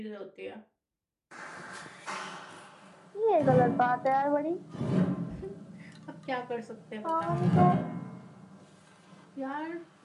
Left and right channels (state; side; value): identical; both; correlation 1.00